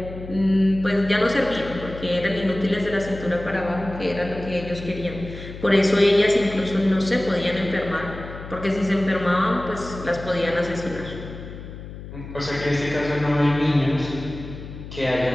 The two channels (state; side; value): noise; left; hum, 12 dB below the sound